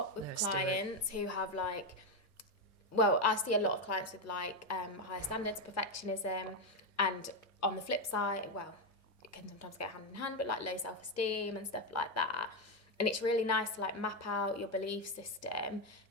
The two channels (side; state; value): both; normal; correlation 0.07